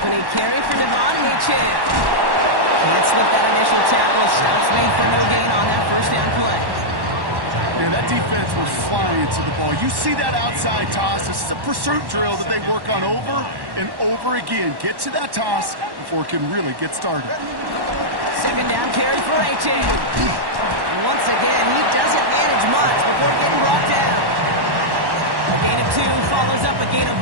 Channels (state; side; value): late; left; 1.1 ms